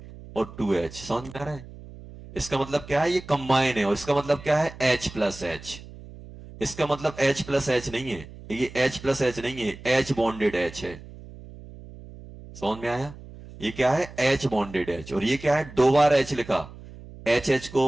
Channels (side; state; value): right; noise; hum, 17 dB below the sound